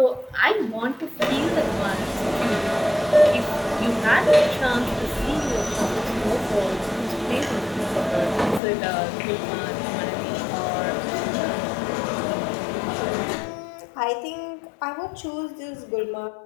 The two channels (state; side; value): drops out; right; at 8.6 s